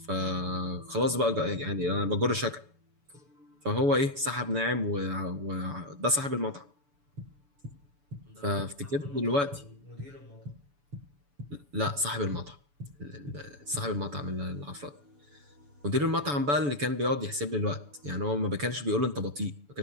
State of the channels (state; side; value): late; left; 7.0 ms